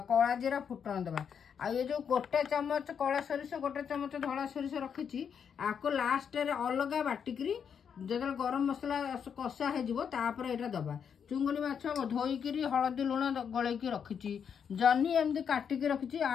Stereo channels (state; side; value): quieter; right; 7.4 dB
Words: कला जीरा फुटण दबा। आ ये जो गोटे चमच कला सोरिष गोटे चमच धला सोरिष रखी आपको लास्ट रे अलग बाटिकी जो गरम मसला कषा होपर यहाँ दबा। चुंगुड़ी माछ धोईकी हलदी लुण गलैकी रखी। जन्नी एमती काटिकी रखी।